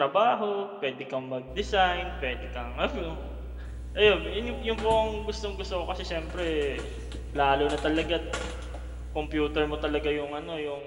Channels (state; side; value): identical; both; correlation 1.00